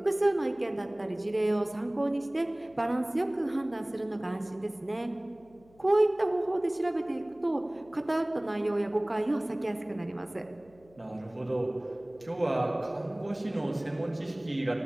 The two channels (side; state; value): left; noise; hum, 28 dB below the sound